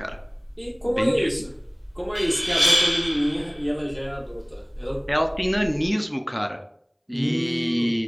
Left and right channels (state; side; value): identical; both; correlation 1.00